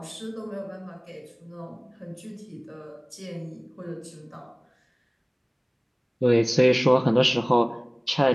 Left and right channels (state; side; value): identical; both; correlation 1.00